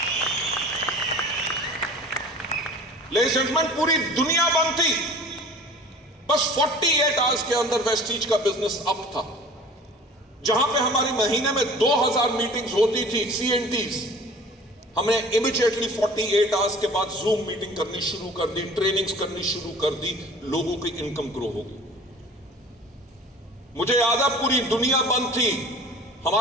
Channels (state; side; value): normal; both; correlation 0.44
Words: लेडीज एंड जेंटलमैन, पूरी दुनिया बंद थी। बस 48 आवर्स के अंदर वेस्टीज का बिजनेस अप था। जहां पे हमारी महीने में 2000 मीटिंग्स होती थी, CNTs, हमने इमीडिएटली 48 आवर्स के बाद जूम मीटिंग करनी शुरू कर दी, ट्रेनिंग्स करनी शुरू कर दी, लोगों की इनकम ग्रो हो गई। मुझे याद है पूरी दुनिया बंद थी।